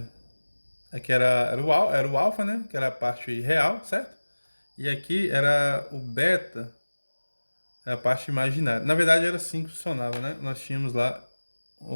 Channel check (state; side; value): inverted; both; correlation -1.00